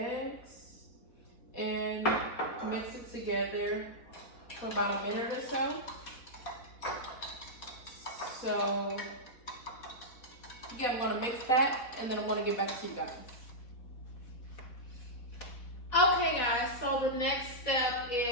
and mix it together for about a minute or so. So yeah, I'm gonna mix that and then I'm gonna get back to you guys. Okay, guys, so the next step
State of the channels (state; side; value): late; right; 4.1 ms